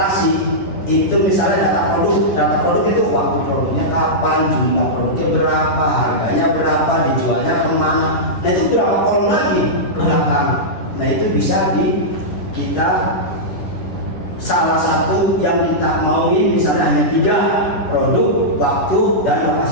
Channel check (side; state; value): right; late; 10 ms